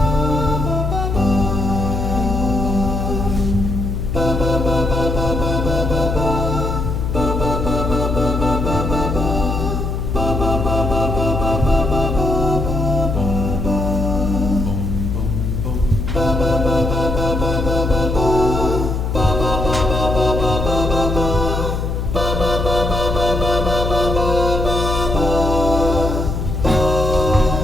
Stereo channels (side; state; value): left; noise; hum, 2 dB below the sound